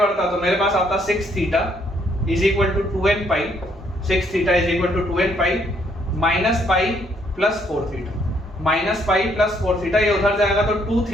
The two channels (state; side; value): normal; both; correlation 0.69